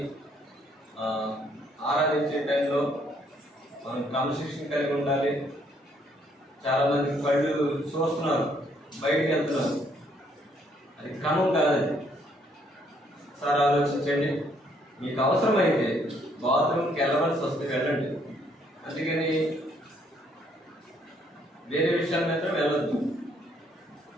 ఆరాధించే టైంలో మనం క్రమశిక్షణ కలిగి ఉండాలి. చాలా మంది కళ్ళు చూస్తున్నారు, బయటికి వెళ్తున్నారు, అది క్రమం కాదు. సార్ ఆలోచించండి, మీకు అవసరమైతే బాత్రూమ్కి వెళ్ళవలసి వస్తే వెళ్ళండి, అందుకని వేరే విషయాల మీద వెళ్ళొద్దు.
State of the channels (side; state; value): both; normal; correlation 0.68